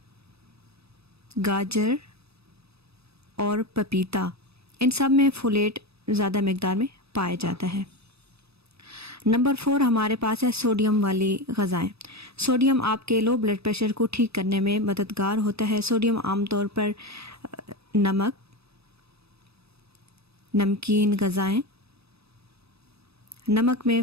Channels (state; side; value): late; left; 0.78 ms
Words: गाजर और पपीता, इन सब में फोलेट ज़्यादा मिकदार में पाया जाता है। नंबर 4 हमारे पास है सोडियम वाली ग़ज़ाएँ। सोडियम आपके लो ब्लड प्रेशर को ठीक करने में मददगार होता है। सोडियम आमतौर पर नमक, नमकीन ग़ज़ाएँ, नमक में